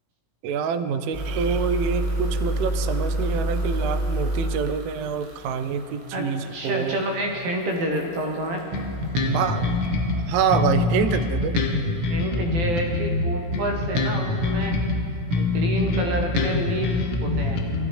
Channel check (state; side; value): late; left; 18 ms